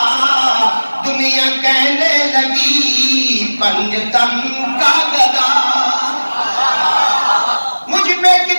دنیا کہنے لگی پنجتن کا گدا. مجھ پہ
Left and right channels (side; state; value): both; inverted; correlation -1.00